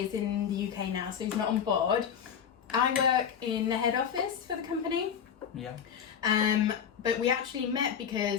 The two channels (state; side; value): quieter; right; 8.0 dB